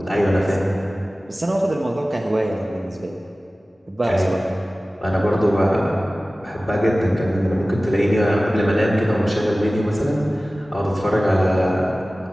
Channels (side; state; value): both; normal; correlation 0.97